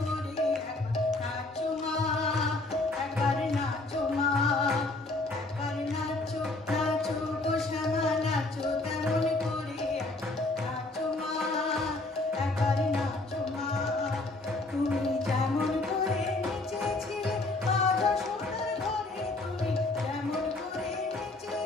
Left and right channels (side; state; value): right; quieter; 3.0 dB